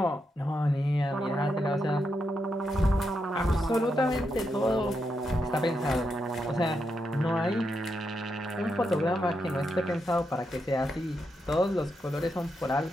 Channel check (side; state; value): both; normal; correlation 0.83